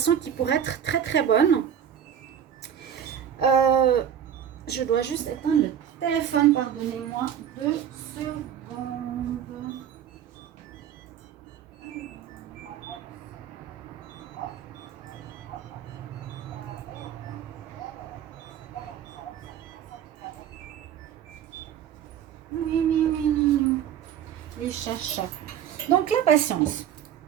qui pourrait être très, très bonne. Je dois juste éteindre le téléphone. Pardonnez-moi 2 secondes. Oui. Les chachas. Donc, la patience.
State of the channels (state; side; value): quieter; left; 9.3 dB